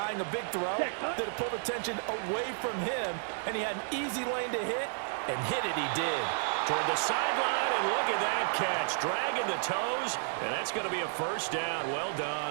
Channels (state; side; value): silent; left; 57 dB below the other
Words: a big throw that it pulled attention away from him, and he had an easy lane to hit, and hit it he did. Toward the sideline, and look at that catch. Dragging the toes, and that's going to be a first down. Well